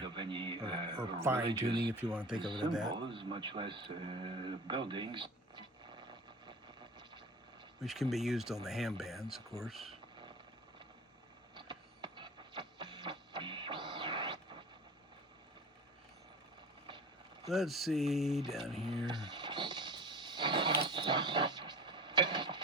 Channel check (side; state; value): both; normal; correlation 0.36